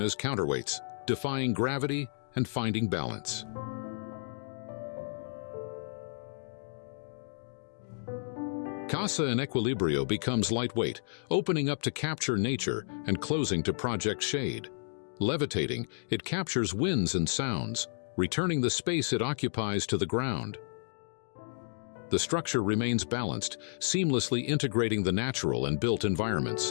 counterweights, defying gravity and finding balance. Casa in Equilibrio becomes lightweight, opening up to capture nature and closing to project shade. Levitating, it captures winds and sounds, returning the space it occupies to the ground. The structure remains balanced, seamlessly integrating the natural and built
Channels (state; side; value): silent; right; digital silence